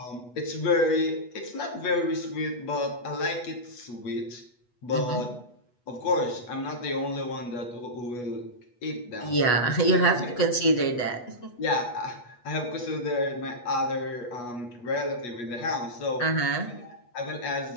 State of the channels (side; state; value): right; late; 8.2 ms